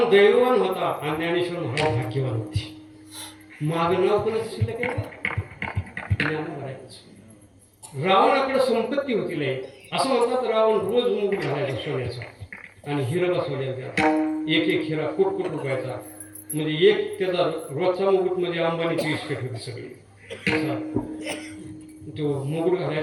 दैववान होता आणि ज्ञानेश्वर महाराज भाग्यवान होते माग नाव कोणाचं शिल्लक आहे ज्ञानोबराचं रावणाकडे संपत्ती होती लय असं म्हणतात रावण रोज मुकुट घालायचा सोन्याचा आणि हिरा बसवल्याचा एक एक हिरा कोट रुपयाचा म्हणजे एक त्याचा रोजचा मुकुट म्हणजे अंबानीची इस्टेट होती सगळी तो मुकुट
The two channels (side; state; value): both; identical; correlation 1.00